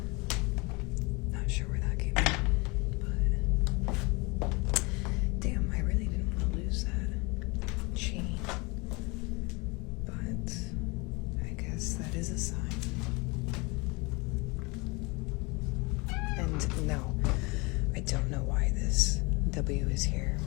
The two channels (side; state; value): right; quieter; 27.0 dB